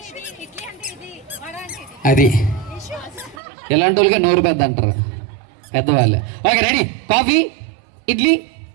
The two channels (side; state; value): left; drops out; at 3.4 s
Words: అది ఎలాంటి వాళ్ళకి నోరు పెద్ద అంటారు పెద్దవాళ్ళు. Okay, ready? Coffee, idli,